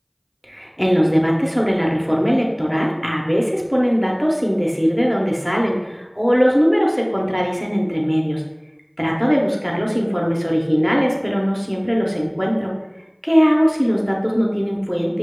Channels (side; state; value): both; identical; correlation 1.00